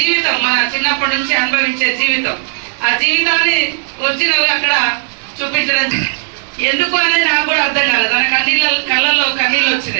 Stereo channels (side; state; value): left; silent; digital silence